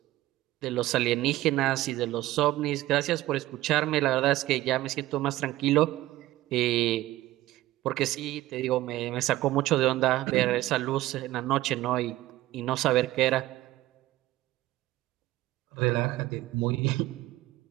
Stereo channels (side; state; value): left; quieter; 16.4 dB